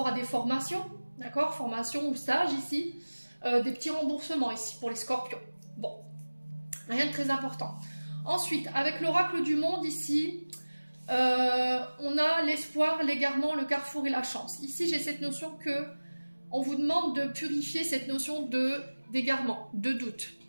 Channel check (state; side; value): inverted; both; correlation -1.00